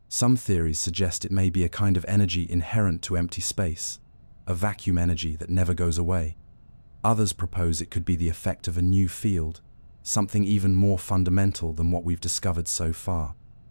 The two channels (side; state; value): both; inverted; correlation -1.00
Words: Some theories suggest it may be a kind of energy inherent to empty space, a vacuum energy that never goes away. Others propose it could be the effect of a new field, something even more fundamental than what we've discovered so far.